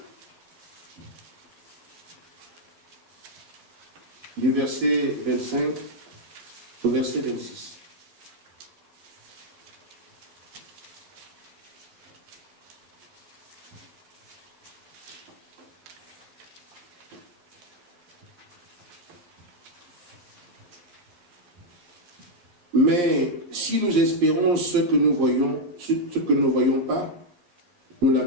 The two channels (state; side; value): late; left; 11 ms